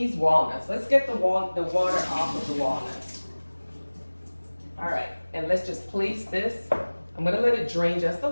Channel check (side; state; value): both; inverted; correlation -1.00